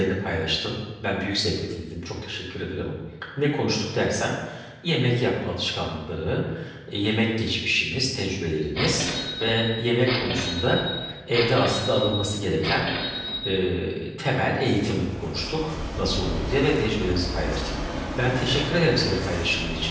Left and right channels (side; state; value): both; identical; correlation 1.00